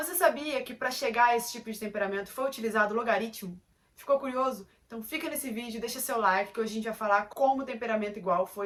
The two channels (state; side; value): identical; both; correlation 1.00